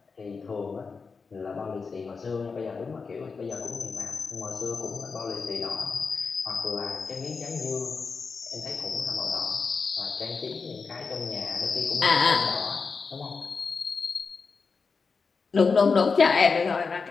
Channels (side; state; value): right; quieter; 4.9 dB